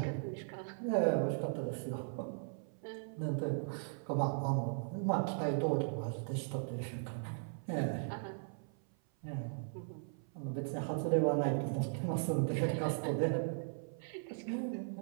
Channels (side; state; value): left; silent; 52 dB below the other